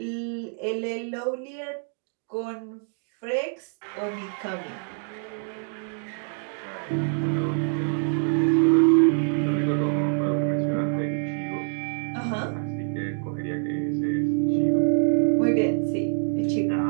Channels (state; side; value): silent; left; 56 dB below the other